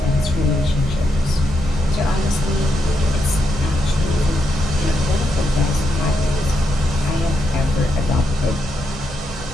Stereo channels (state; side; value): normal; both; correlation 0.81